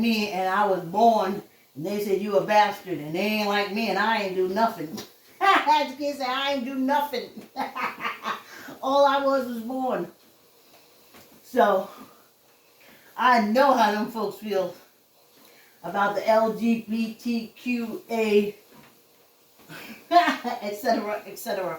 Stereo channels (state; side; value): identical; both; correlation 1.00